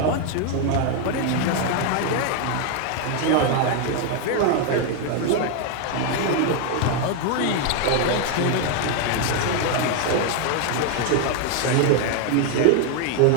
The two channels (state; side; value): different; both; correlation 0.01